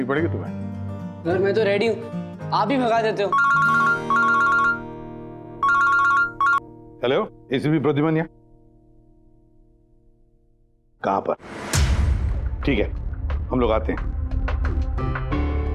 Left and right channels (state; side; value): identical; both; correlation 1.00